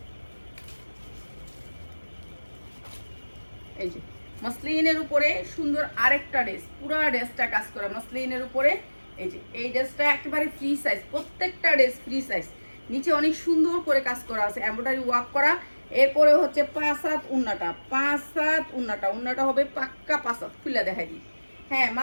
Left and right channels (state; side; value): inverted; both; correlation -1.00